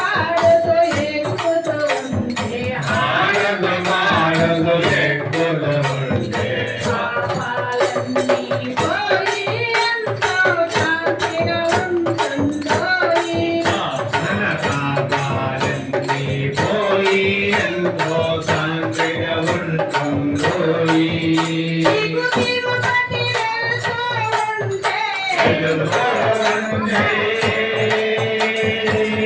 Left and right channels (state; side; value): identical; both; correlation 1.00